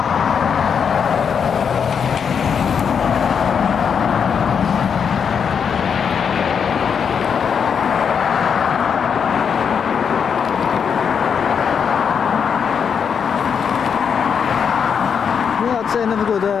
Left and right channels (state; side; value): quieter; right; 6.9 dB